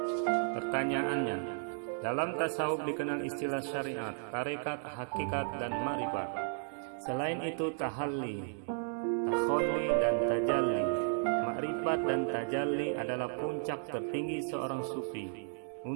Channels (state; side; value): silent; left; 55 dB below the other